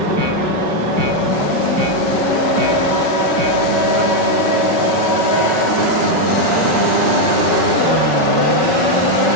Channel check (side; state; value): left; late; 5.3 ms